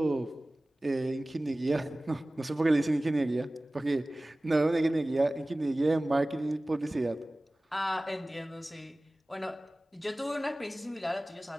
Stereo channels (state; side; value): normal; both; correlation 0.98